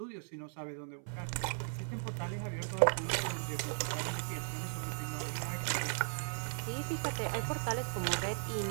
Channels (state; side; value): silent; left; 53 dB below the other